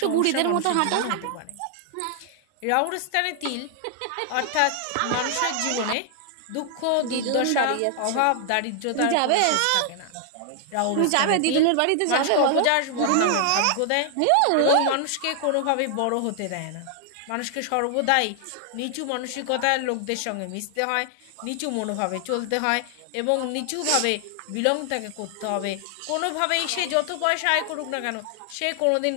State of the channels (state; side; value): different; both; correlation 0.00